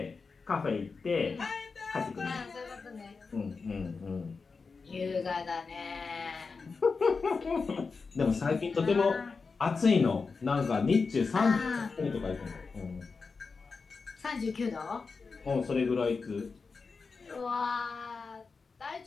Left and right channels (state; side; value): quieter; right; 4.7 dB